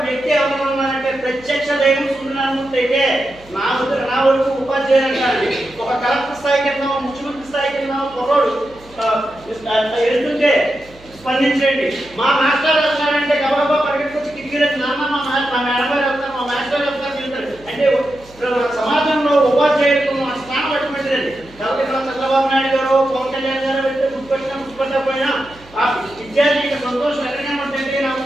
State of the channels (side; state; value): right; noise; hum, 24 dB below the sound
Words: వ్యక్తి ఎవరన్నారంటే ప్రత్యక్ష దైవం సుందరమూర్తి అయితే నా వరకు ఉపాధ్యాయులు అంటారు. ఒక కలెక్టర్ స్థాయి కింద, ముఖ్యమంత్రి స్థాయి కింద పొరడు ఎదుగుతుంటే స్పందించండి. మా మాస్టర్ వెళ్తారంటే గబగబా పరిగెత్తుకొచ్చి కిటికీలకు నాన్న మా మేడం గారు వెళ్తారు, మా మాస్టర్ వెళ్తారు వెళ్తారు అంటే సమాజంలో ఉపాధ్యాయులకు మా స్థానం అటువంటిదండి. కాబట్టి చంద్రబాబు నాయుడు గారు, పవన్ కళ్యాణ్ గారు వెళ్తే గుర్తుపెట్టకపోయినా ఆ విద్యార్థి సంతోషం ఎక్కడైనా ఉంటుంటే